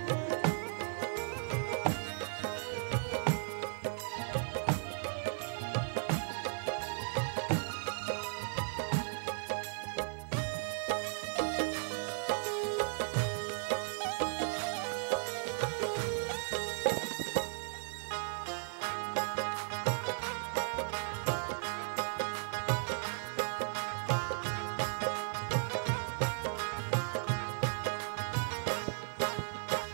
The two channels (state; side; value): silent; left; digital silence